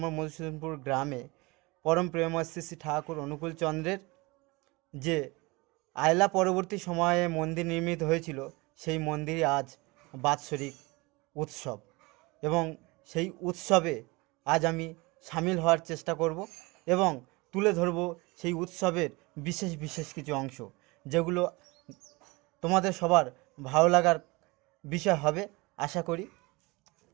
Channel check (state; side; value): quieter; left; 24.5 dB